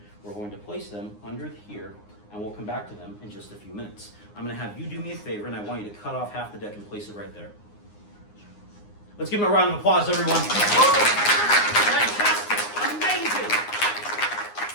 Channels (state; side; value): late; right; 9.7 ms